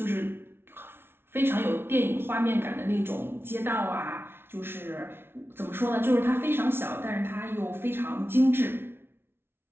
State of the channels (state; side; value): late; left; 0.11 ms